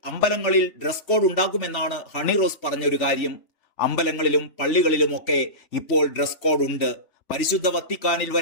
അമ്പലങ്ങളിൽ ഡ്രസ് കോഡ് ഉണ്ടാക്കുമെന്നാണ് ഹണി റോസ് പറഞ്ഞൊരു കാര്യം. അമ്പലങ്ങളിലും പള്ളികളിലുമൊക്കെ ഇപ്പോൾ ഡ്രസ് കോഡ് ഉണ്ട്. പരിശുദ്ധ വത്തിക്കാനിൽ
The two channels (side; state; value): right; late; 3.5 ms